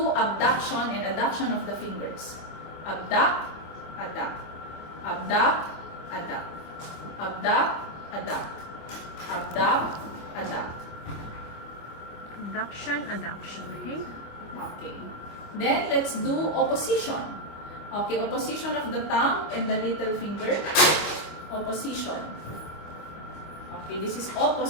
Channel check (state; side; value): late; right; 25 ms